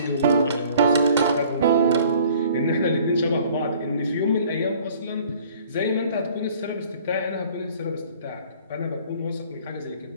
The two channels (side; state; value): both; inverted; correlation -0.53